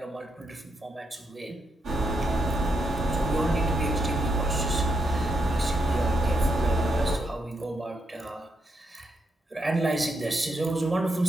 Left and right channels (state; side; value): normal; both; correlation 0.81